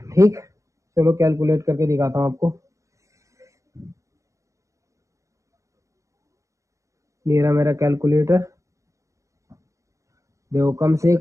ठीक। चलो कैलकुलेट करके दिखाता हूँ आपको। मेरा कैलकुलेटर, देखो कम से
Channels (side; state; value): left; late; 0.15 ms